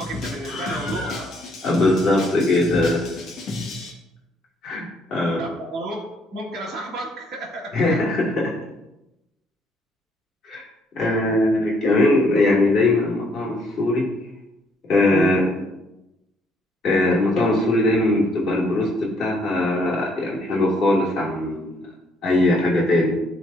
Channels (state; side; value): normal; both; correlation 0.68